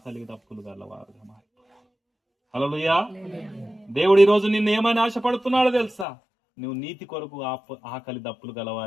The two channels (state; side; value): drops out; right; at 6.1 s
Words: దప్పులు గలవారుగా మారిపోయారు. హల్లెలూయా. దేవుడు ఈ రోజు నిన్ను ఏమని ఆశపడుతున్నాడో తెలుసా? నువ్వు నీతి కొరకు ఆకలి దప్పులు